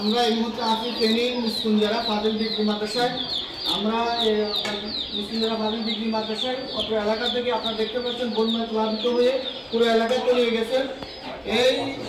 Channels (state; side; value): identical; both; correlation 1.00